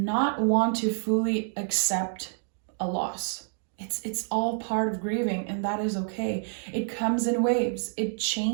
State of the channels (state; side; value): silent; left; digital silence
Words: want to fully accept a loss. It's all part of grieving, and that is okay. It comes in waves, it